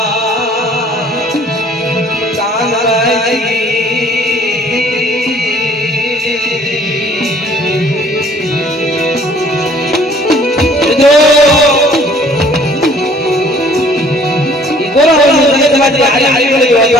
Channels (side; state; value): both; normal; correlation 0.56